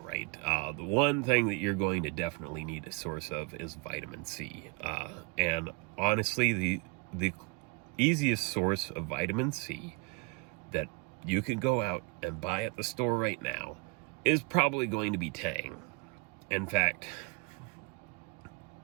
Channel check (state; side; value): quieter; left; 27.9 dB